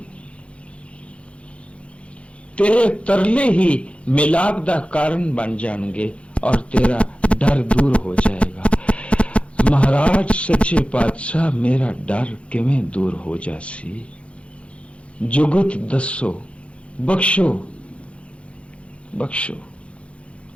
तेरे तरले ही मिलाप दा कारण बन जाएंगे और तेरा डर दूर हो जाएगा। महाराज सच्चे पातशाह मेरा डर किवें दूर हो जासी? जुगत दसो, बख्शो बख्शो।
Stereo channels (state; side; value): late; right; 0.061 ms